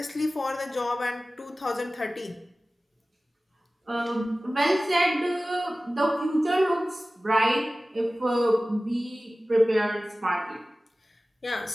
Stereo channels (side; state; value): both; normal; correlation 0.97